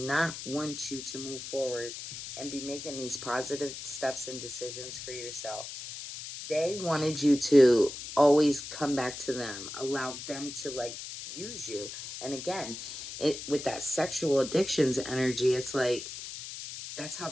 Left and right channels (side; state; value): left; noise; hiss, 9 dB below the sound